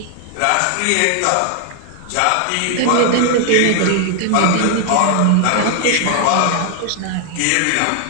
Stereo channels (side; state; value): both; different; correlation 0.00